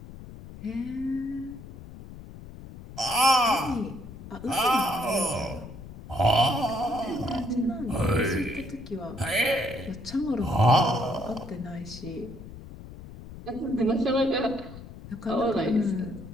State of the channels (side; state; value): left; noise; rumble, 14 dB below the sound